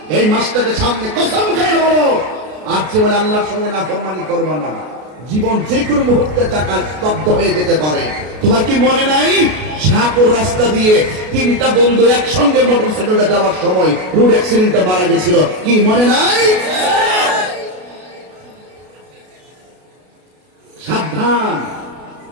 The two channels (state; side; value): late; left; 33 ms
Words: এই মাসটাকে সামনে কসম খেয়ে বলো, আর যে বলে আল্লাহর সঙ্গে নাফরমানি করবা না। জীবন যে কোনো মুহূর্তে টাকা স্তব্ধ হয়ে যেতে পারে। তোমার কি মনে নাই শাহপুর রাস্তা দিয়ে তিনটা বন্ধু একসঙ্গে মোটরসাইকেলে যাওয়ার সময় রোড অ্যাক্সিডেন্টে মারা গেছিল? কি মনে নাই? সাবধান,